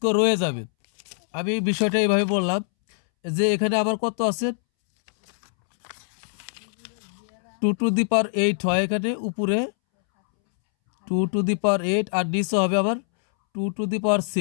রয়ে যাবে। আমি এই বিষয়টা এইভাবে বললাম যে এখানে আবার কত আছে 2⁸ হয়, এখানে উপরে 2⁸ আর নিচে হবে আবার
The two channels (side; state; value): right; silent; 63 dB below the other